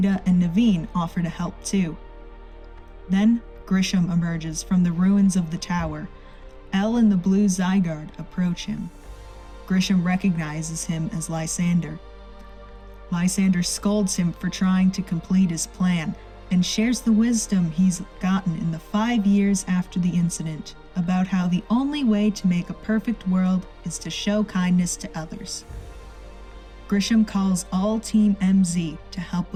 and Naveen offer to help too. Then, Grisham emerges from the ruins of the tower. Elle and the blue Zygarde approach him. Grisham recognizes him as Lysander. Lysander scolds him for trying to complete his plan and shares the wisdom he's gotten in the 5 years after the incident about how the only way to make a perfect world is to show kindness to others. Grisham calls all Team MZ to help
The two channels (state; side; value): identical; both; correlation 1.00